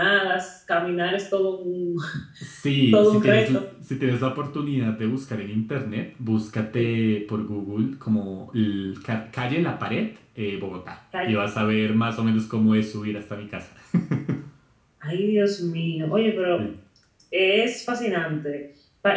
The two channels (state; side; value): identical; both; correlation 1.00